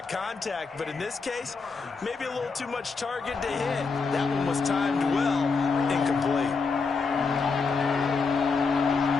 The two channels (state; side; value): quieter; right; 4.7 dB